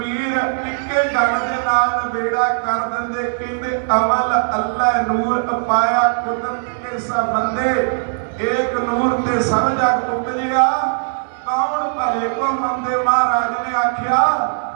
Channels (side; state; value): left; silent; digital silence